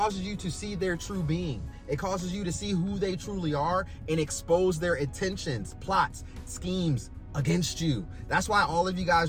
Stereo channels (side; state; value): both; identical; correlation 1.00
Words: see their true being. It causes you to see who they truly are and expose their intentions, plots, schemes against you. That's why all of you